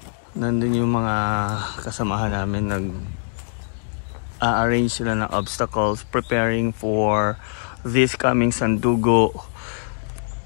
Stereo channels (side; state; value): right; silent; 64 dB below the other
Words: Nandun yung mga kasamahan namin, nag-arrange sila ng obstacles, preparing for this coming Sandugo